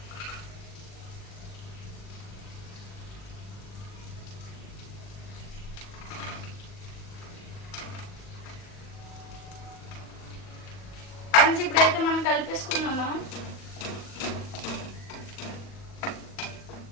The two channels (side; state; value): right; late; 40 ms